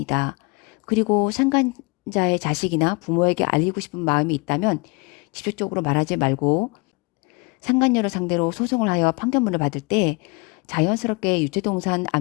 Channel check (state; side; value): quieter; right; 29.5 dB